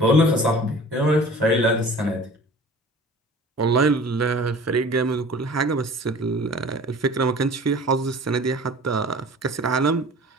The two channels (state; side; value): normal; both; correlation 0.44